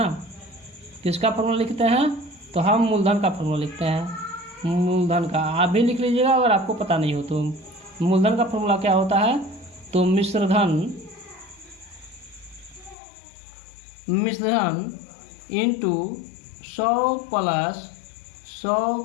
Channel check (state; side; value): drops out; right; at 13.0 s